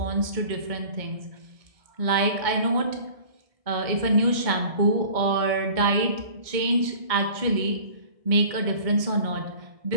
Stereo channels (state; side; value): late; left; 1.6 ms